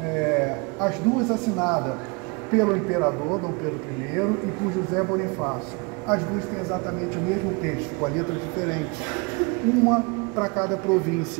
As duas assinadas pelo imperador Dom Pedro I e por José Bonifácio. As duas têm exatamente o mesmo texto, com a letra diferente, uma para cada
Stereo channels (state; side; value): quieter; left; 30.2 dB